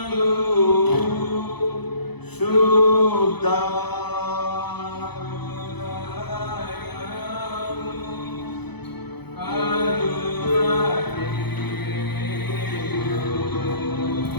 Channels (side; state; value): right; late; 0.98 ms